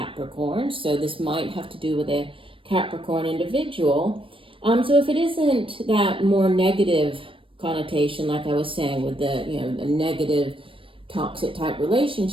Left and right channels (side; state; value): left; late; 0.25 ms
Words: So this might have to do with a Capricorn individual. So if it isn't that more negative connotation, like I was saying, with the, you know, the negative toxic type